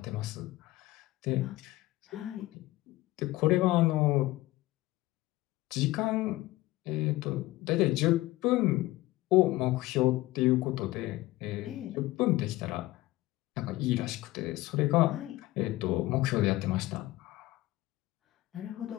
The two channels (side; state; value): right; quieter; 18.1 dB